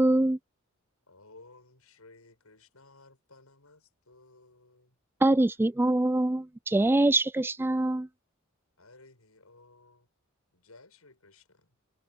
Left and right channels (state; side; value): normal; both; correlation 0.82